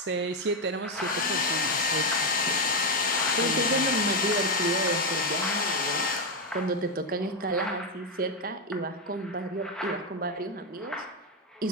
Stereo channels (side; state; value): both; normal; correlation 0.06